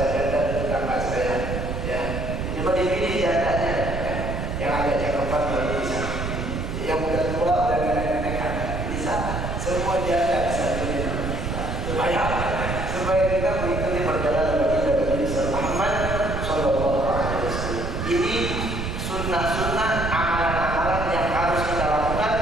janda di tetangga saya. Ya, ini mah dipilih jandanya, ya. Yang agak cakepan baru bisa pilih. Yang udah tua udah nenek-nenek kan bisa. Semua janda bisa pilih nama kita. Supaya kita mengikuti perjalanan baginda Nabi Muhammad Sallallahu Alaihi Wasallam. Ini sunnah-sunnah amalan-amalan yang harus kita lakukan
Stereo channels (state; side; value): noise; right; rumble, 3 dB below the sound